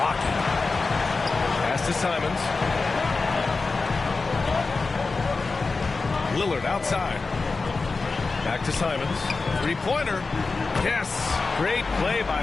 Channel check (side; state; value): right; quieter; 4.0 dB